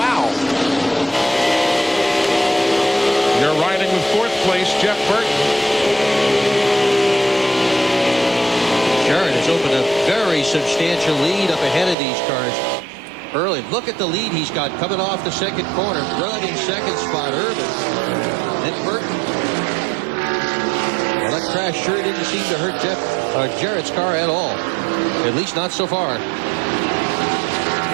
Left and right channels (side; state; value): left; drops out; at 12.0 s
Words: You're riding with fourth place, Jeff Burton. Jarrett has opened a very substantial lead up ahead of these cars. Early, look at the lead he's got coming off the second corner. Rudd in second spot, Irvin. Then Burton. Well, that crash sure didn't seem to hurt Jarrett's car at all. At least not so far.